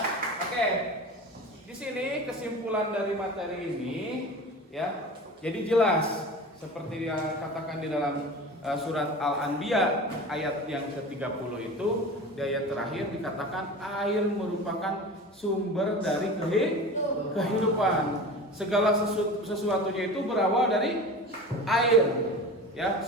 Oke, di sini kesimpulan dari materi ini ya, jadi jelas seperti yang katakan di dalam surat Al-Anbiya ayat yang ke-30 itu, di ayat terakhir dikatakan air merupakan sumber dari kehidupan. Segala sesuatunya itu berawal dari air. Ya,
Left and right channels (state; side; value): normal; both; correlation 0.34